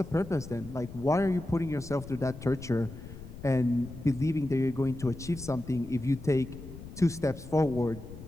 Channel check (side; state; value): left; noise; rumble, 14 dB below the sound